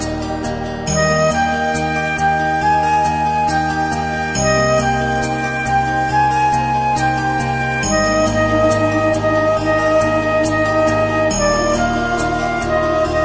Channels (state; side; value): identical; both; correlation 1.00